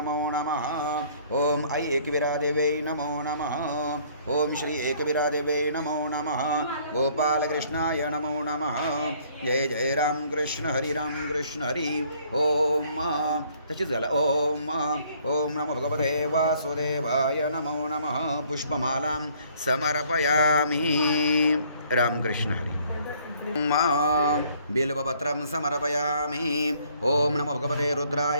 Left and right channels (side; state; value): both; inverted; correlation -0.61